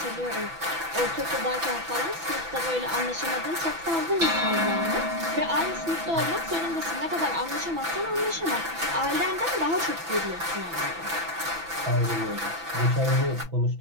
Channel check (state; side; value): late; left; 6.0 ms